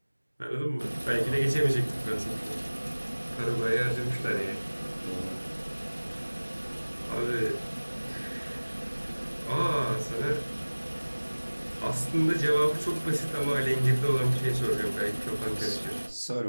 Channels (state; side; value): inverted; both; correlation -1.00